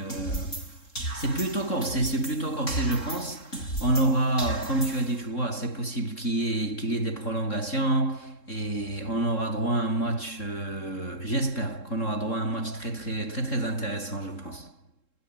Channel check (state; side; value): late; right; 3.7 ms